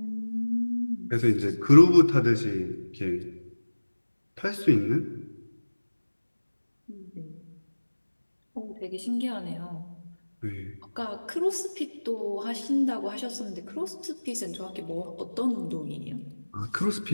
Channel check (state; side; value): inverted; both; correlation -1.00